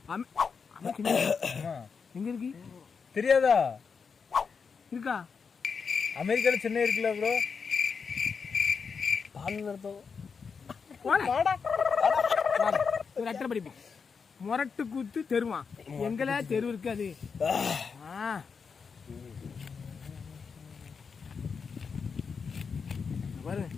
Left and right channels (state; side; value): quieter; right; 5.7 dB